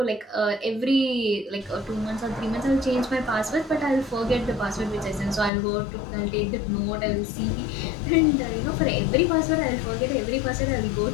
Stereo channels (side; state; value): right; drops out; at 5.5 s